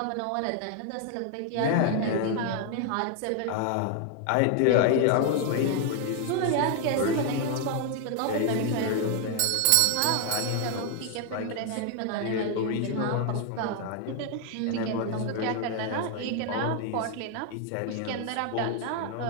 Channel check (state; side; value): different; both; correlation 0.00